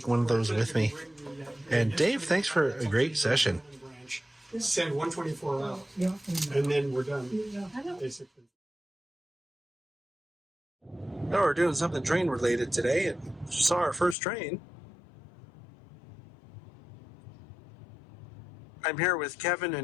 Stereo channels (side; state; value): right; drops out; at 14.2 s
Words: one of those with me. And Dave, thanks for a great session. Send 124 out, and then we're done, basically. Now we're doing something train related today, and saw our first train. I'm here with Kevin